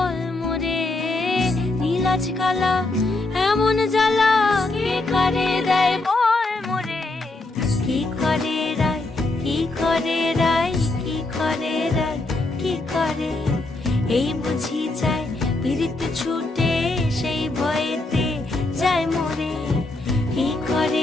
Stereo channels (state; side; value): quieter; right; 3.0 dB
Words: মোরে নীলাজ কালা এমন জ্বালা কে কারে দেয় বল মোরে কি করে রায় কি করে রায় কি করে রায় কি করে এই বুঝি যায় পীড়িত ছুটে সেই ভয়েতে যায় মরে কি